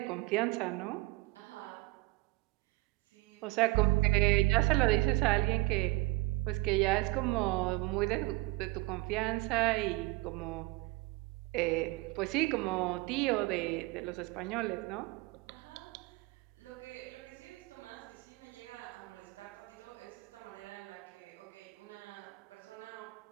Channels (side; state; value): left; quieter; 21.8 dB